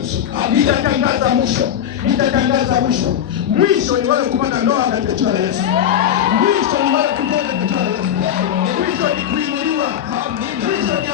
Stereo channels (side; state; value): right; quieter; 9.9 dB